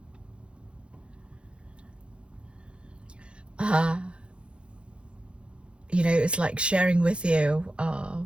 Uh, it's like sharing with you,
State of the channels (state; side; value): late; left; 0.057 ms